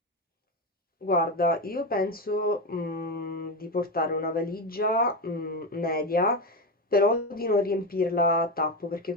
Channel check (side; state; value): both; normal; correlation 0.15